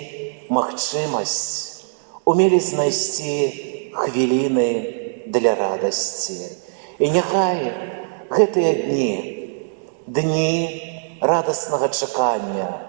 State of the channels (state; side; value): silent; left; digital silence